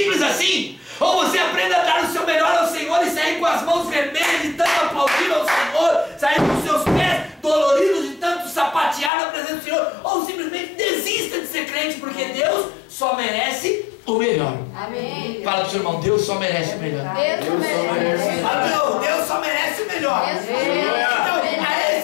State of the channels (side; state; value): right; drops out; at 9.1 s